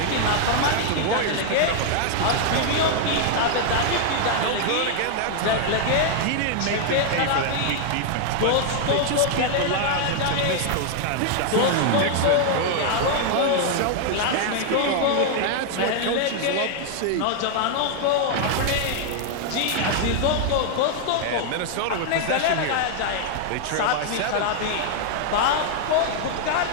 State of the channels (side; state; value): both; different; correlation 0.00